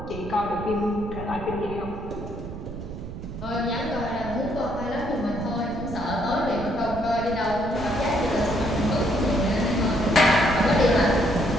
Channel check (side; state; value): right; noise; rumble, 10 dB below the sound